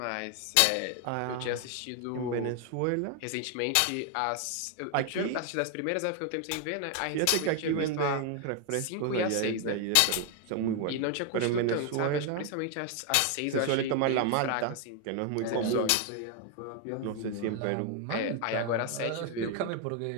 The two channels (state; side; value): different; both; correlation 0.01